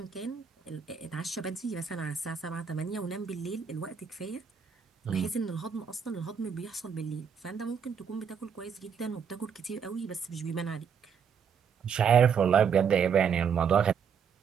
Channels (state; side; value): quieter; left; 6.9 dB